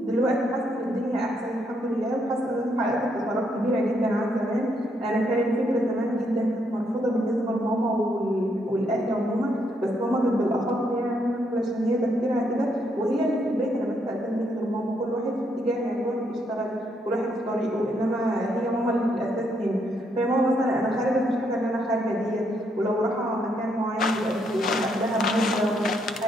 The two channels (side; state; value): both; normal; correlation 0.75